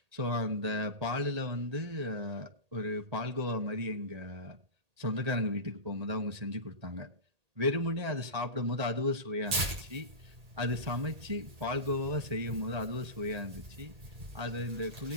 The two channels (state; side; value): late; left; 1.8 ms